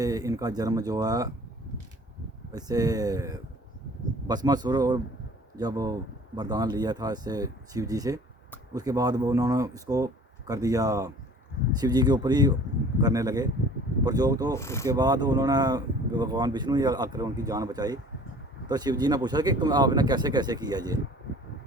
इनका जन्म जो है ऐसे भस्मासुर और जब वरदान लिया था इससे शिव जी से, उसके बाद वो उन्होंने इसको कर दिया शिव जी के ऊपर ही करने लगे प्रयोग। तो उसके बाद उन्होंने भगवान विष्णु ही आकर उनकी जान बचाई। तो शिव जी ने पूछा कि तुम आपने कैसे कैसे किया ये।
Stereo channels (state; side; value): normal; both; correlation 0.48